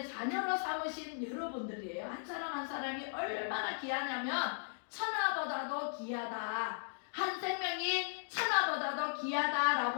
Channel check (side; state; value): right; silent; digital silence